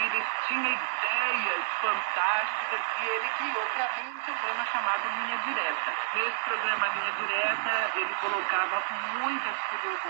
tinha ideias fantásticas, e ele criou para mim um programa chamado Linha Direta. Nesse programa Linha Direta, ele colocava muitas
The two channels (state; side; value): silent; left; digital silence